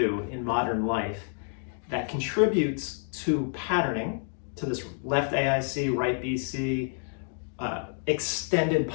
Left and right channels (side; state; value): right; silent; 59 dB below the other